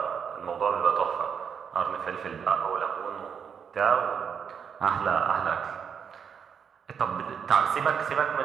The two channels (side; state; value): left; quieter; 7.1 dB